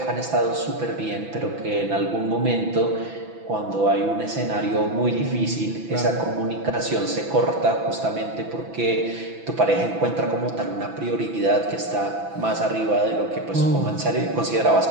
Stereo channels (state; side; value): late; left; 6.0 ms